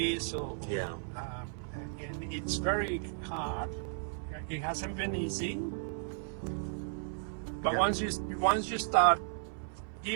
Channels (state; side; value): silent; left; 55 dB below the other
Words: And it's very hard. It hasn't been easy. But once you start